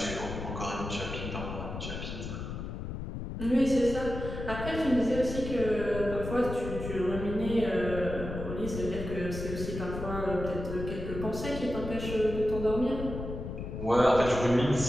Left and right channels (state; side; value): noise; left; rumble, 7 dB below the sound